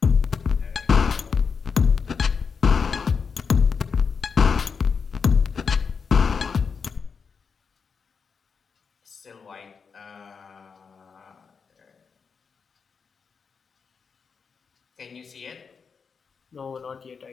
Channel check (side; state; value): right; quieter; 5.7 dB